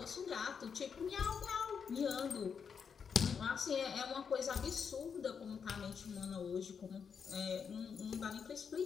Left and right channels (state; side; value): quieter; right; 6.5 dB